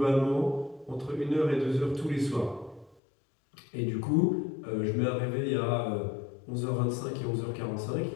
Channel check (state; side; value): drops out; right; at 3.0 s